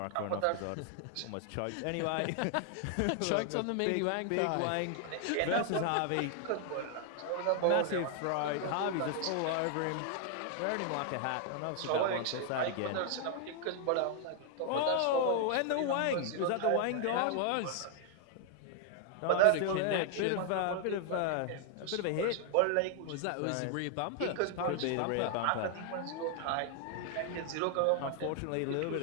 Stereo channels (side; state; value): both; different; correlation 0.00